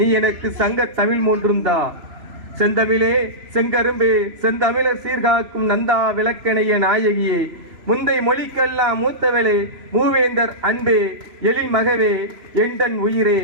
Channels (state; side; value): late; left; 3.0 ms